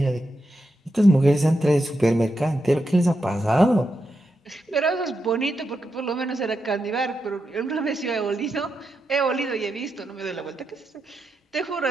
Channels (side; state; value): both; normal; correlation 0.86